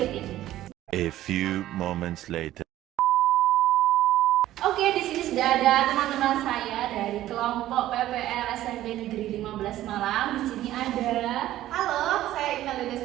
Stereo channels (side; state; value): left; quieter; 14.0 dB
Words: ini. A few moments later. Oke, di sini sudah ada teman-teman saya dari kelompok PPL SMP Negeri 15 Malang. Di sini ada. Halo, saya Ina